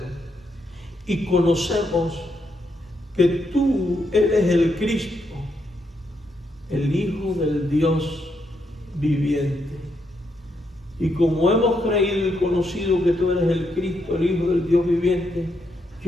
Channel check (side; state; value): both; normal; correlation 0.79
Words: y conocemos que tú eres el Cristo, el Hijo del Dios viviente. Y como hemos creído y conocido que tú eres el Cristo, el Hijo del Dios viviente,